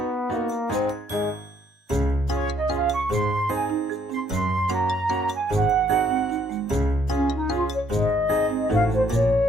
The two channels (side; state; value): both; normal; correlation 0.68